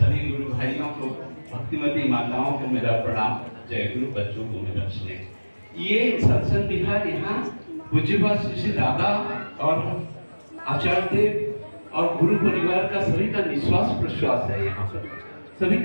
गुरु भाइयों को, भक्तिमती माताओं को मेरा प्रणाम, जय गुरु, बच्चों को मेरा स्नेह। ये सत्संग बिहार यहाँ पूज्यपाद श्री दादा और आचार्य देव और गुरु परिवार का सभी का निश्वास प्रश्वास है। यहाँ पर सभी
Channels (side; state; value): both; inverted; correlation -1.00